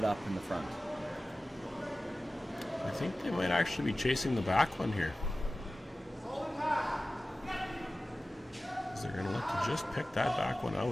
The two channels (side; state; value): both; normal; correlation 0.96